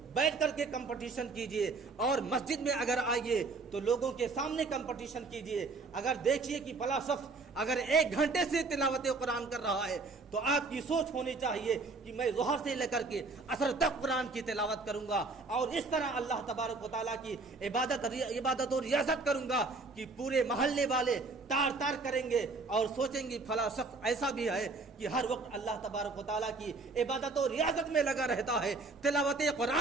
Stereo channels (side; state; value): left; quieter; 3.8 dB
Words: بیٹھ کر کے کمپٹیشن کیجئے، اور مسجد میں اگر آئیے تو لوگوں کے سامنے کمپٹیشن کیجئے۔ اگر دیکھیے کہ فلاں شخص اگر 1 گھنٹے سے تلاوت قرآن کر رہا ہے تو آپ کی سوچ ہونی چاہیے کہ میں ظہر سے لے کر کے عصر تک قرآن کی تلاوت کروں گا، اور اس طرح اللہ تبارک و تعالیٰ کی عبادت و ریاضت کروں گا کہ پورے محلے والے تار تار کریں گے اور سوچیں گے فلاں شخص ایسا بھی ہے کہ ہر وقت اللہ تبارک و تعالیٰ کی عبادت و ریاضت میں لگا رہتا ہے، تلاوت